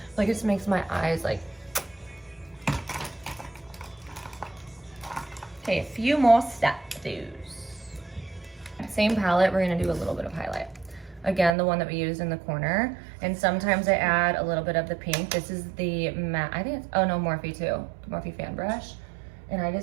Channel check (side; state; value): left; drops out; at 11.5 s